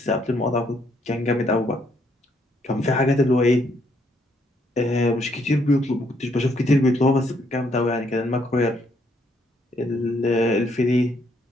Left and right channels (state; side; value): normal; both; correlation 0.71